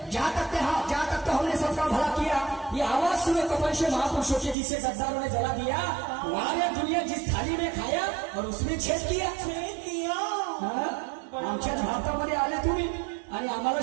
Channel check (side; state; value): left; drops out; at 4.5 s